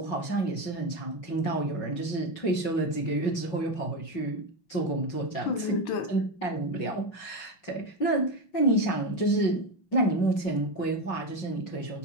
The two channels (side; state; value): right; late; 5.5 ms